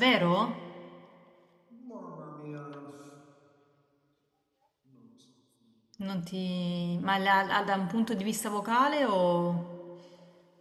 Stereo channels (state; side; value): identical; both; correlation 1.00